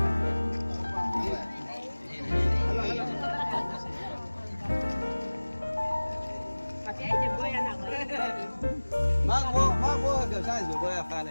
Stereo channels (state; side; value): inverted; both; correlation -1.00